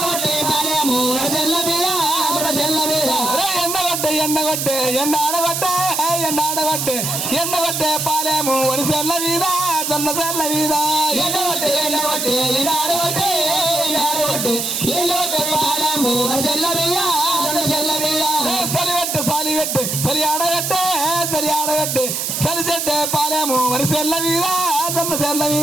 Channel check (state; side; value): noise; right; hiss, 1 dB below the sound